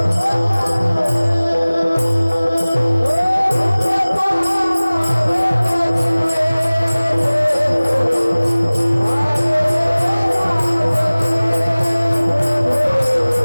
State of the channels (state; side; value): inverted; both; correlation -0.99